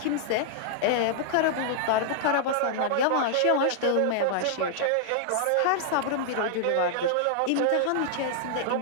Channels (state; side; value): different; both; correlation -0.01